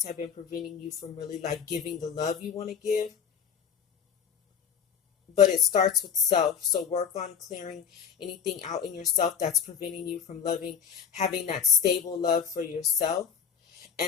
have been preventing you from really like giving the love you want to give. But it starts with self. So work on clearing anything out in yourself that's preventing you from having that stable love for yourself.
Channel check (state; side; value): quieter; right; 7.5 dB